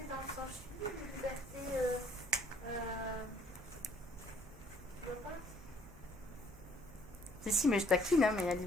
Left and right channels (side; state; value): both; normal; correlation 0.62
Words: dans le sens libre, liberté. Tu vois pas? Si, mais je taquine, hein, mais allez,